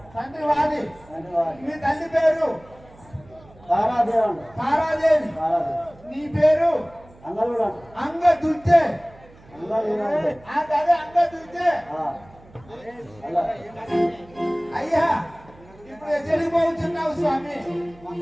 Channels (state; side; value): noise; right; hum, 25 dB below the sound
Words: తండ్రి వాలి. మీ తల్లి పేరు తారాదేవి. నీ పేరు అంగదుర్జే. అదే అంగదుర్జే. అయ్యా ఇప్పుడు ఎక్కడికి పోతున్నావు స్వామి?